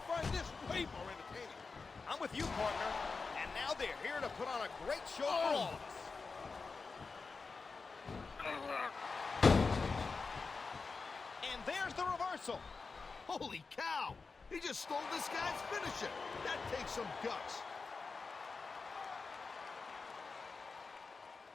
find this way more entertaining. I'm with you, partner. And now they're here to put on a great show for all of us. And there's the reversal. Holy cow! He just stole this guy's finisher. That takes some guts.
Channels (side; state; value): right; quieter; 4.4 dB